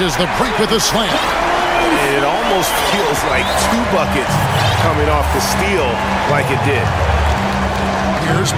the break with a slam. It almost feels like two buckets coming off the steal like it did. Here's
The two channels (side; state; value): both; identical; correlation 1.00